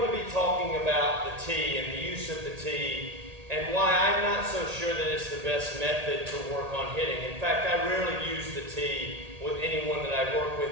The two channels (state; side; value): late; left; 1.8 ms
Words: to be talking about the tee and the use of the tee and why I'm not so sure that it's the best method to work on hitting. In fact, I rarely use the tee with anyone that I work